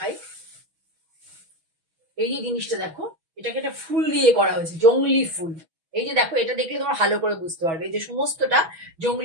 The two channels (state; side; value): late; left; 6.2 ms